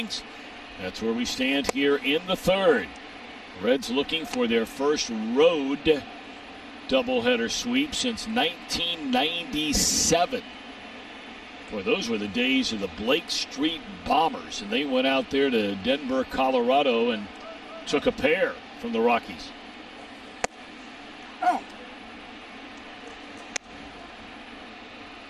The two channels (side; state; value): both; identical; correlation 1.00